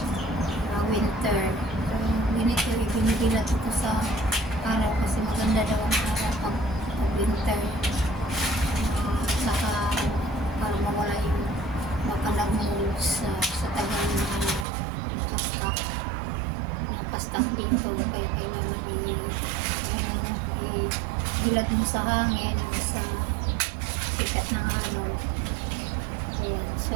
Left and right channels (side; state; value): left; drops out; at 14.7 s